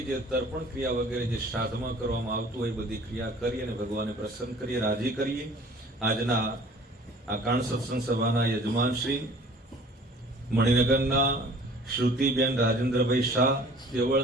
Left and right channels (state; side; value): normal; both; correlation 0.49